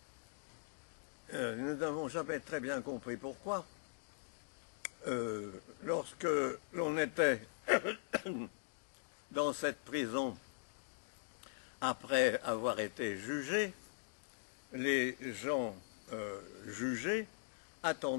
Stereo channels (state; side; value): silent; right; digital silence